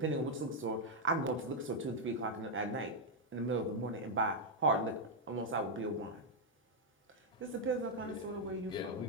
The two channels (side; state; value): both; normal; correlation -0.01